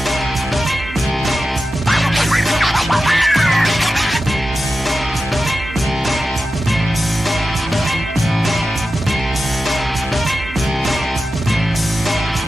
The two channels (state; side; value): normal; both; correlation 0.92